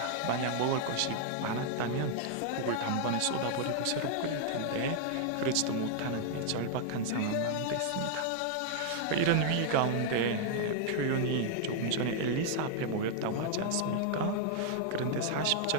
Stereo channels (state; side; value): different; both; correlation -0.01